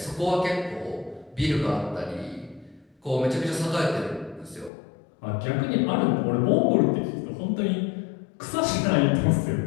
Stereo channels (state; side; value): drops out; right; at 4.7 s